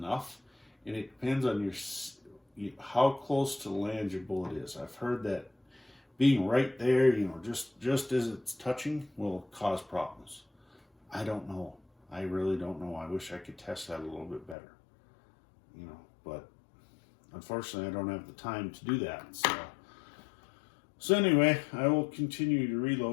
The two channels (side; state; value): right; drops out; at 14.6 s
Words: and it depends on how close to the land your bullet is. I've heard that being right there, you know, just as it's touching, will cause problems. I don't know. I really don't know. I wish I could test that a little bit better, you know, but unfortunately, I don't have the time to do that. So anyway, I will continue to